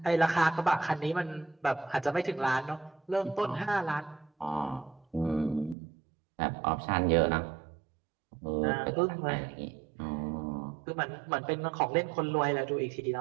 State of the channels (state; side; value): drops out; left; at 5.8 s